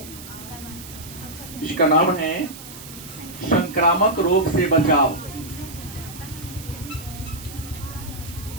इसका नाम है संक्रामक रोग से बचाव।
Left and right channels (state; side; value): noise; right; hiss, 14 dB below the sound